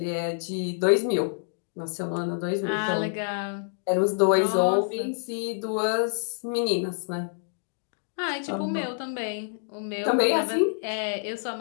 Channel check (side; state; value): right; silent; digital silence